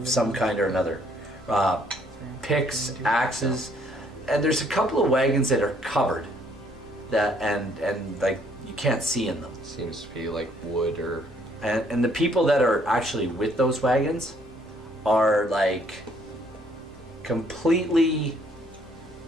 some kind or another, picks, axes, and there's a couple of wagons that are covered, that and like you can't see in them. Seems to be like wood or. And the people that are actually with those wagons are like completely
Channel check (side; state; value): both; normal; correlation 0.65